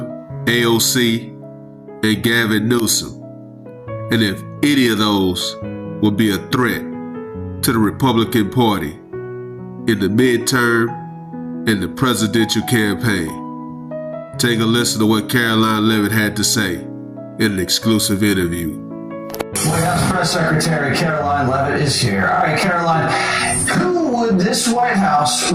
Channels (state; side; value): identical; both; correlation 1.00